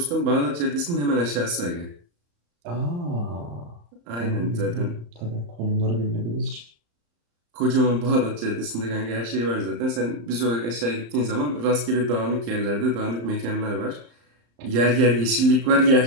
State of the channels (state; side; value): late; left; 34 ms